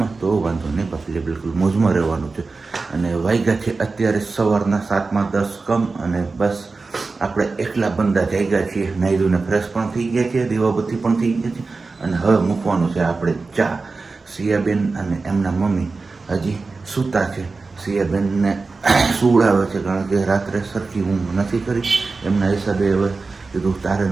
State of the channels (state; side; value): quieter; left; 4.0 dB